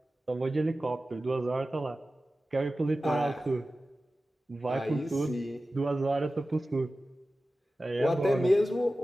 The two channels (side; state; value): both; normal; correlation 0.95